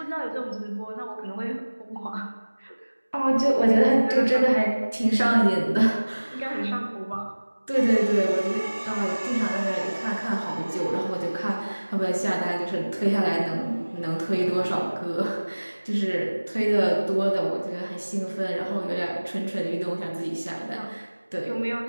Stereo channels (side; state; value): both; inverted; correlation -1.00